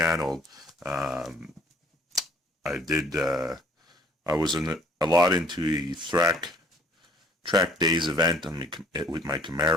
I was a lot into the track days event with my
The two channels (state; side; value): normal; both; correlation 0.56